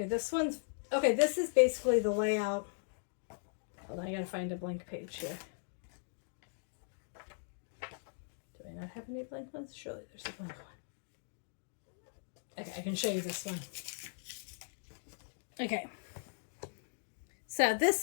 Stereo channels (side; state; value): right; silent; digital silence